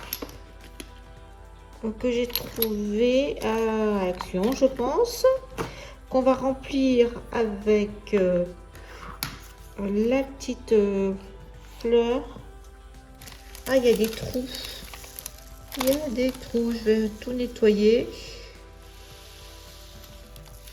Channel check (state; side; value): identical; both; correlation 1.00